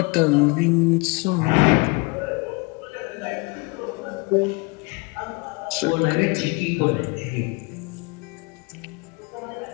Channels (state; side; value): quieter; right; 28.7 dB